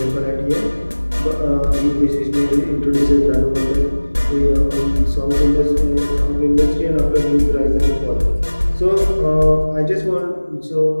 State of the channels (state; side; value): inverted; both; correlation -1.00